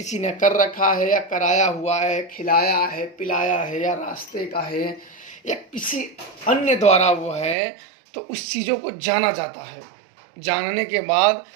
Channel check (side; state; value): left; drops out; at 7.6 s